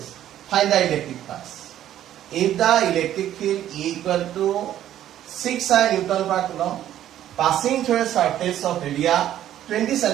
Find the electric flux. If the electric field E equal to 6i Newton per coulomb passing through a surface of area 20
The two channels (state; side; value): quieter; left; 11.8 dB